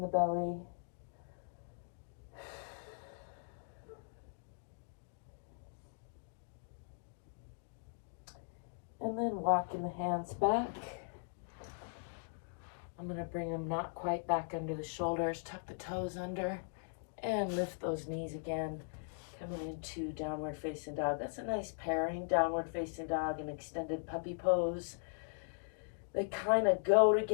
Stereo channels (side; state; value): right; silent; digital silence